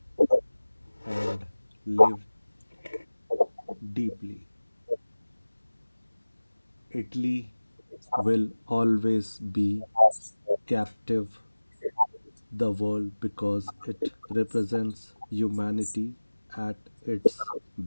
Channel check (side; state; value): both; inverted; correlation -1.00